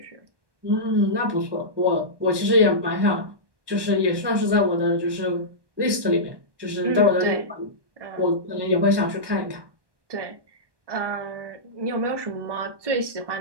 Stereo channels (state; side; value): late; left; 1.2 ms